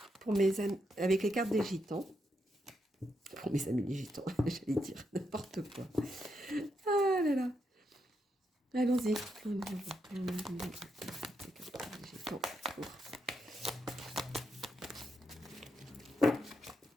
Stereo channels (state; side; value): normal; both; correlation 0.81